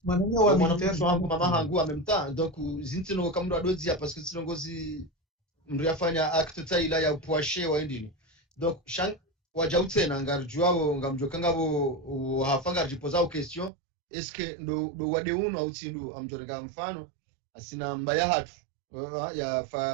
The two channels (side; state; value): left; drops out; at 13.7 s